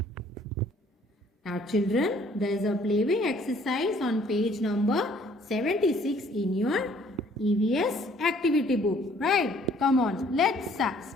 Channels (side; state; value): both; normal; correlation 0.59